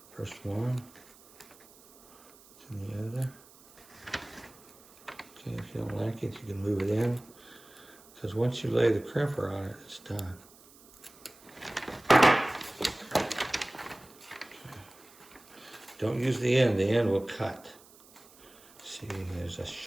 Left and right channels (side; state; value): right; noise; hiss, 24 dB below the sound